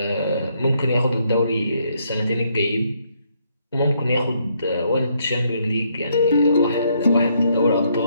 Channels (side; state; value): both; inverted; correlation -0.73